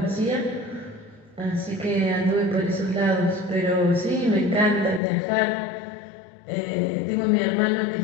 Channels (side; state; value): right; drops out; at 5.0 s